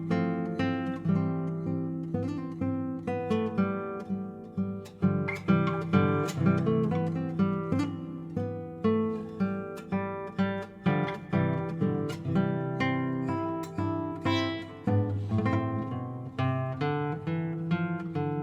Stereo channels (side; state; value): both; identical; correlation 1.00